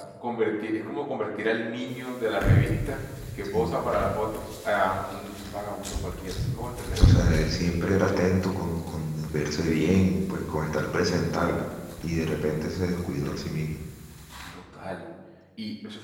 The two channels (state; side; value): identical; both; correlation 1.00